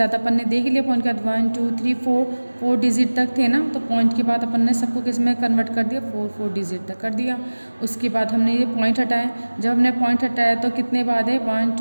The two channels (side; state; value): both; inverted; correlation -1.00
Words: अपन ने देख लिया, पॉइंट के बाद 1 2 3 4 डिजिट तक थे ना, तो पॉइंट के बाद अपन ने सबको किस में कन्वर्ट कर दिया, 4 डिजिट तक कर दिया। उसके बाद हमने ये पॉइंट हटाया, जब हमने पॉइंट हटाया तो कितने बाद है 1